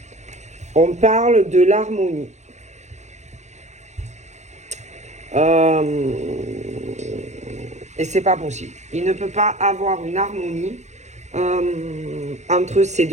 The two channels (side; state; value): left; late; 0.33 ms